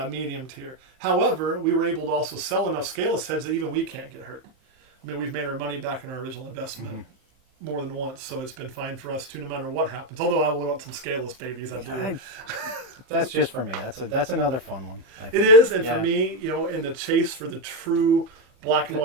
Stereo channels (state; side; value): late; left; 15 ms